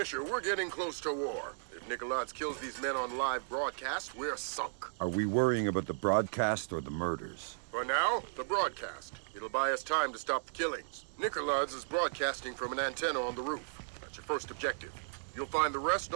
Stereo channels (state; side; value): silent; left; digital silence